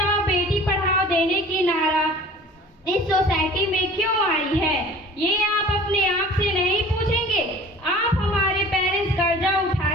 बेटी पढ़ाओ देने की नारा इस सोसाइटी में क्यों आई है, ये आप अपने आप से नहीं पूछेंगे? आप हमारे पेरेंट्स कर्जा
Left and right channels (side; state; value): both; normal; correlation 0.45